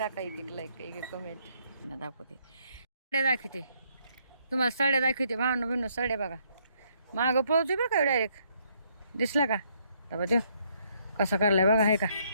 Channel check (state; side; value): inverted; both; correlation -0.71